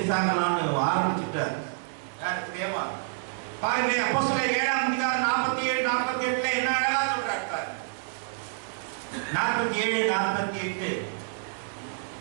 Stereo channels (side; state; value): left; silent; digital silence